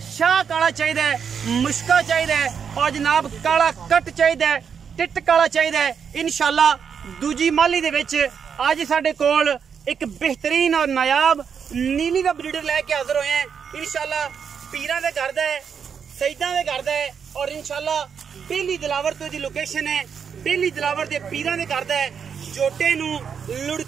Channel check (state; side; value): quieter; left; 7.0 dB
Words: शाह काला चाहिए, मुश्का चाहिए और जनाब काला कट चाहिए, टिट काला चाहिए। इंशाल्लाह दूजी माली दे विच अज साडे कोल एक बेहतरीन और नायाब नीली दा ब्रीडर लैके हाजिर होए हैं। इंशाल्लाह पीरां दे घर दा है, सईदां दे घर दा है और इंशाल्लाह बेली दिलावर तो दी लोकेशन है। बेली दिलावर दे पीरां दे घर दा है। जोटे नूं